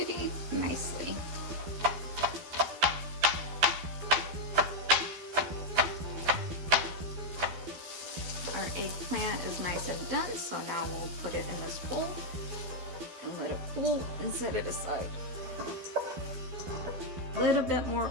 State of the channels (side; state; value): left; late; 12 ms